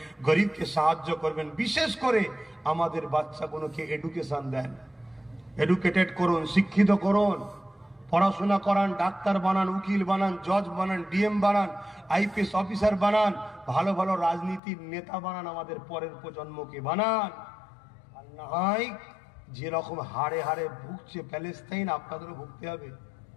গরিবকে সাহায্য করবেন। বিশেষ করে আমাদের বাচ্চাগুলোকে এডুকেশন দেন, এডুকেটেড করুন, শিক্ষিত করুন, পড়াশোনা করান, ডাক্তার বানান, উকিল বানান, জজ বানান, ডিএম বানান, আইপিএস অফিসার বানান, ভালো ভালো রাজনীতির নেতা বানান, আমাদের পরের প্রজন্মকে বানান। আর না হয় যেরকম হাড়ে হাড়ে ভুগছে প্যালেস্তাইন, আপনাদেরও ভুগতে হবে।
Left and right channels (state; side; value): drops out; right; at 14.6 s